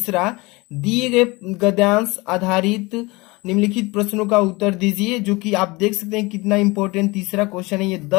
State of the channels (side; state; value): right; quieter; 24.0 dB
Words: दिए गए गद्यांश आधारित निम्नलिखित प्रश्नों का उत्तर दीजिए, जो कि आप देख सकते हैं कितना इंपॉर्टेंट तीसरा क्वेश्चन है। ये